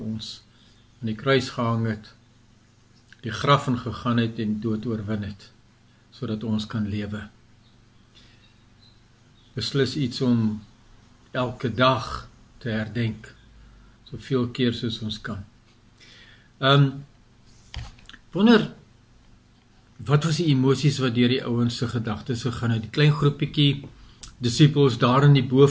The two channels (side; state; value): both; identical; correlation 1.00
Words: ons aan die kruis gehang het, die graf ingegaan het en dood oorwin het, sodat ons kan lewe. Beslis iets om elke dag te herdenk, soveel keer soos ons kan. Wonder, wat was die emosies wat deur die ouens se gedagtes gegaan het? Die klein groepietjie disippels daar in die